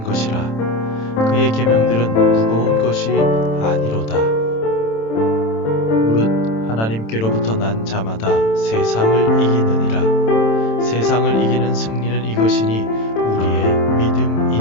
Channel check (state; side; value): late; right; 27 ms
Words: 것이라. 그의 계명들은 무거운 것이 아니로다. 무릇 하나님께로부터 난 자마다 세상을 이기느니라. 세상을 이기는 승리는 이것이니 우리의